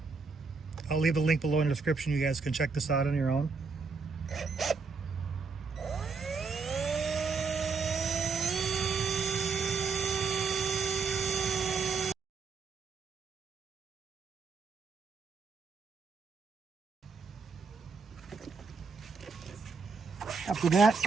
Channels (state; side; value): quieter; left; 4.8 dB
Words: I'll leave a link below in the description. You guys can check this out on your own. After that,